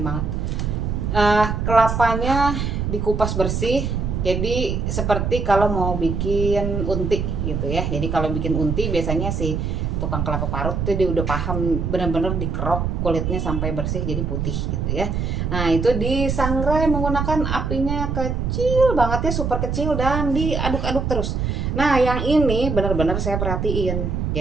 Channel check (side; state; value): right; noise; rumble, 1 dB below the sound